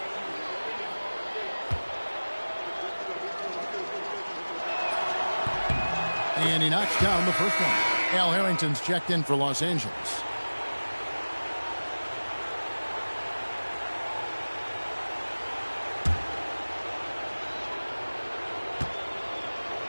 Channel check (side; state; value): both; inverted; correlation -1.00